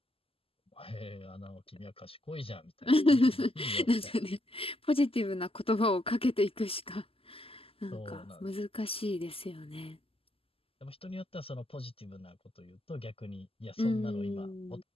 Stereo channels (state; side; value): late; right; 0.27 ms